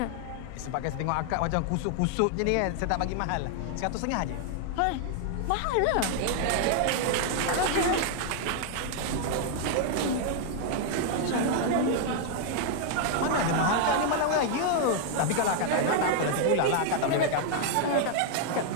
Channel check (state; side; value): different; both; correlation 0.00